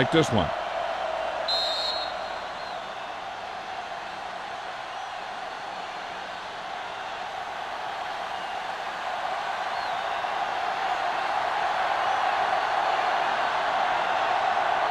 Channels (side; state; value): both; identical; correlation 1.00